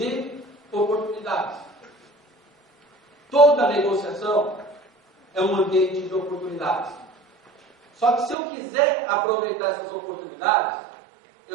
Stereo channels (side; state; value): left; drops out; at 8.3 s